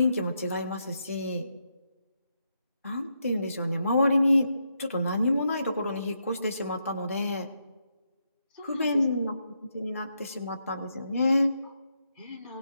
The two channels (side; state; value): both; inverted; correlation -0.81